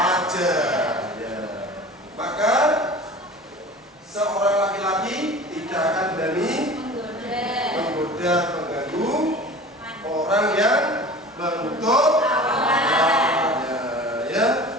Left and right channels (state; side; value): normal; both; correlation 0.39